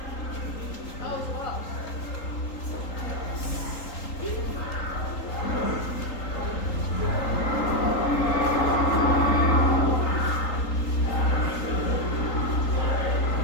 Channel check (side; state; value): right; late; 3.8 ms